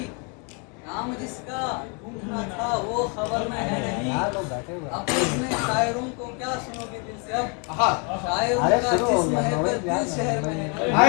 नाम जिसका ढूंढना था वो खबर में है नहीं। अब इसमें शायरों को क्या सुनोगे दिल से? अब शायरों का जिस्म है पर दिल शहर में है।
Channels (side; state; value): right; quieter; 35.6 dB